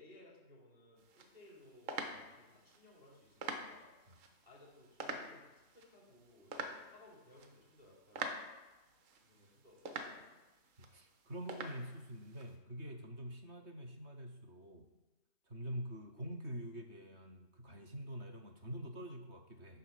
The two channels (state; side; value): late; left; 3.7 ms